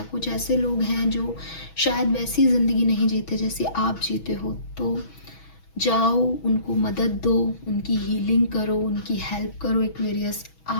कुछ ऐसे लोग हैं जो शायद वैसी ज़िंदगी नहीं जीते जैसी आप जीते हो, तो जाओ उनको मदद दो, उनकी हीलिंग करो, उनकी हेल्प करो एक्वेरियस।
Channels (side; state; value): right; late; 6.2 ms